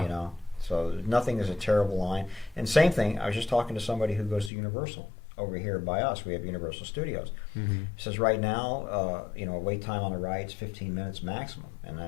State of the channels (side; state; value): right; drops out; at 4.5 s